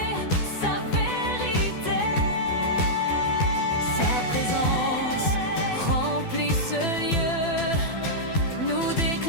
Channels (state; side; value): late; right; 12 ms